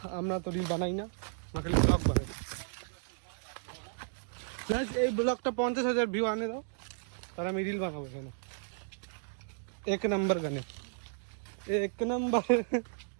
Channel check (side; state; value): left; silent; digital silence